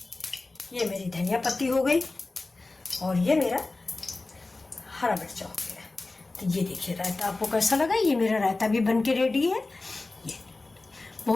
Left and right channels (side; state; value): right; quieter; 3.3 dB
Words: ये मेरी धनिया पत्ती हो गई और ये मेरा हरा मिर्चा हो गया। तो ये देखिए रायता आपको कैसा लगा। ये मेरा रायता भी बन के रेडी है। ये